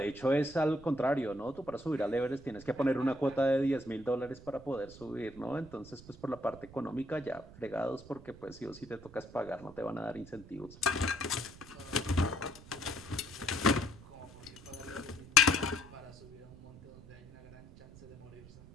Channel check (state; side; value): noise; right; rumble, 19 dB below the sound